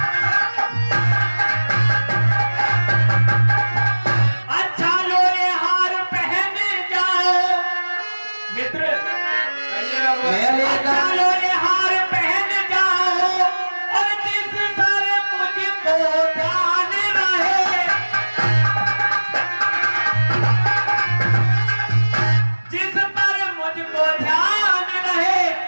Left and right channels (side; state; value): both; inverted; correlation -1.00